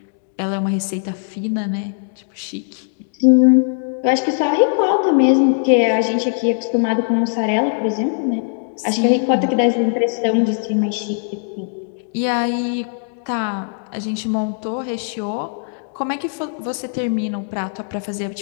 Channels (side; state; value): right; silent; digital silence